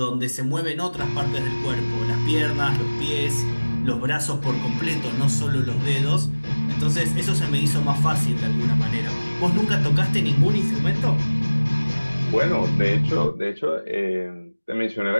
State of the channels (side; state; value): both; inverted; correlation -1.00